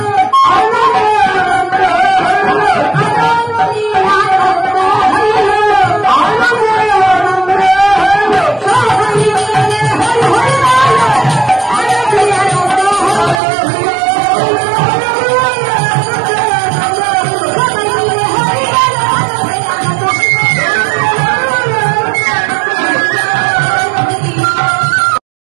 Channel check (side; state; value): left; drops out; at 13.4 s